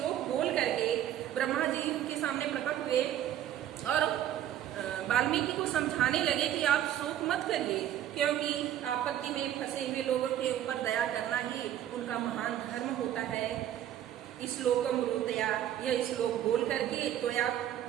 बोल करके ब्रह्मा जी उनके सामने प्रकट हुए और वाल्मीकि को समझाने लगे कि आप शोक मत करिए, क्योंकि आपत्ति में फंसे हुए लोगों के ऊपर दया करना ही उनका महान धर्म होता है। श्लोकम ब्रूतया, यह श्लोक बोल करके त्वया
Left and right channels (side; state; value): left; quieter; 11.5 dB